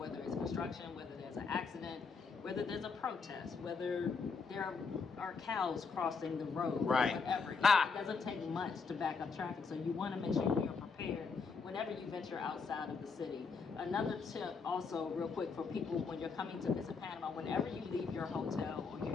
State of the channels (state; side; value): quieter; right; 5.0 dB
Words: it's construction, whether there's an accident, whether there's a protest, whether there are cows crossing the road, right. Whatever. It doesn't take much to back up traffic, so you want to make sure you're prepared whenever you venture outside of the city. Another tip also, real quick, for people when you're coming to visit Panama, whenever you leave your hotel or